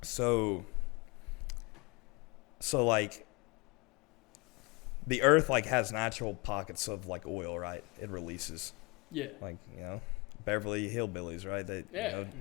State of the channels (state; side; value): quieter; right; 27.9 dB